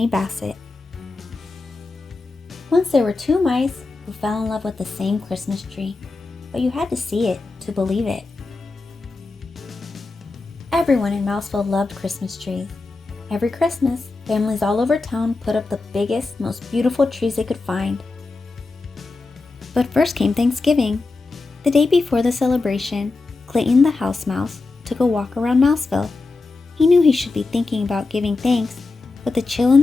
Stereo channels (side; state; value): right; quieter; 3.6 dB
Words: Bassett. Once there were two mice who fell in love with the same Christmas tree, but you had to see it to believe it. Everyone in Mouseville loved Christmas trees. Every Christmas, families all over town put up the biggest, most beautiful trees they could find. But first came Thanksgiving. The day before the celebration, Clayton the house mouse took a walk around Mouseville. He knew he should be thinking about giving thanks, but the chill in